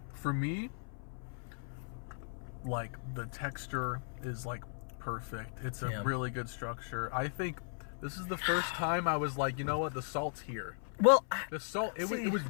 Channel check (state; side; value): silent; right; 53 dB below the other